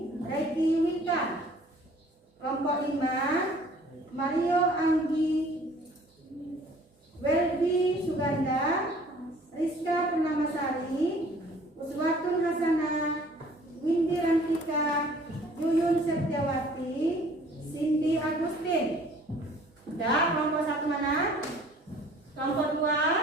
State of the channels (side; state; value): both; normal; correlation 0.53